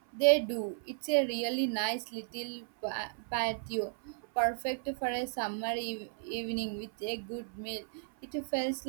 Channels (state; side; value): silent; left; 55 dB below the other